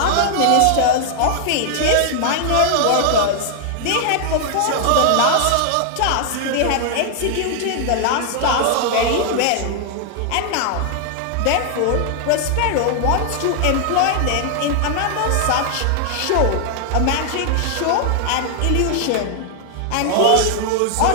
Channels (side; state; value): both; different; correlation 0.00